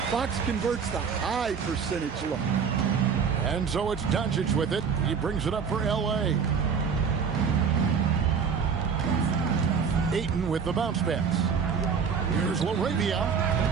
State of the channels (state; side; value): quieter; left; 6.3 dB